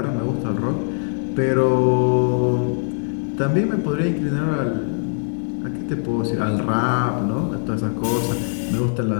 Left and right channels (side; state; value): right; silent; digital silence